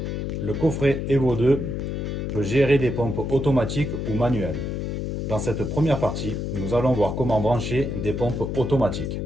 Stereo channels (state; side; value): noise; left; hum, 3 dB below the sound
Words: Le coffret Evo 2 peut gérer des pompes automatiques ou manuelles. Dans cette première partie, nous allons voir comment brancher des pompes automatiques.